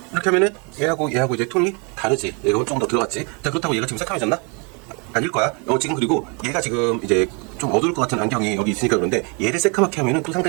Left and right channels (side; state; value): left; quieter; 33.5 dB